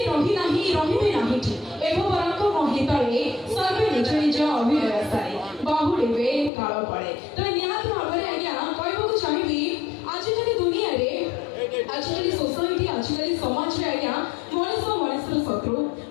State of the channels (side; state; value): right; drops out; at 6.5 s